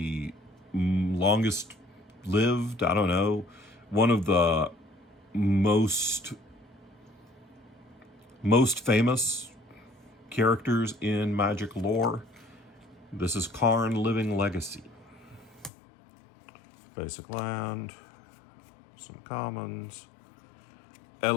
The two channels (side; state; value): right; drops out; at 15.7 s